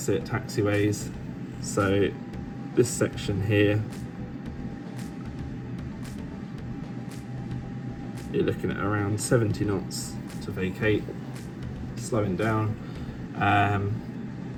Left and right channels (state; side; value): identical; both; correlation 1.00